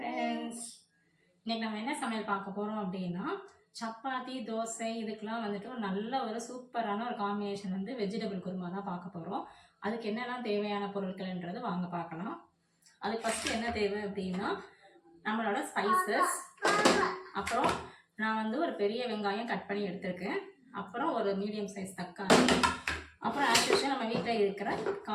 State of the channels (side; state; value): both; identical; correlation 1.00